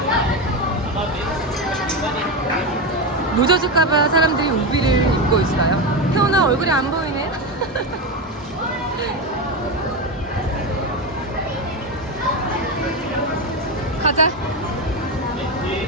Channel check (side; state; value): both; normal; correlation 0.15